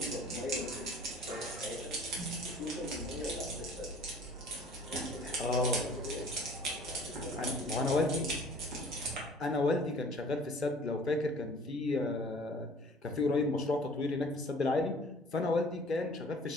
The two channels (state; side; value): normal; both; correlation 0.50